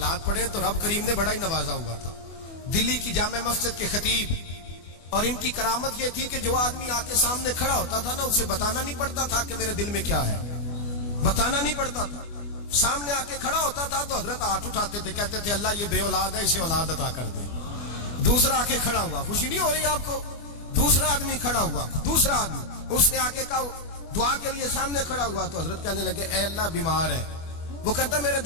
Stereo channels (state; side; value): late; right; 24 ms